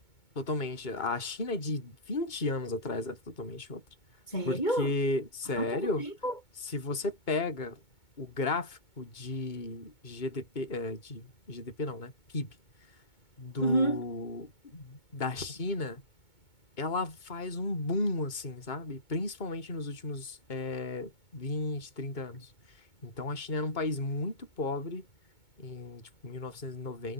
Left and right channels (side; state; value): right; late; 2.2 ms